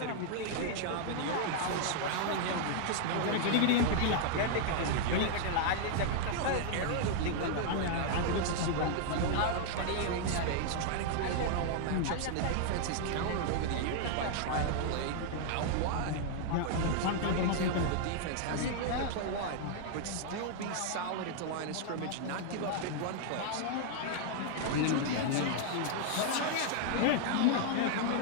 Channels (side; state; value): both; different; correlation 0.00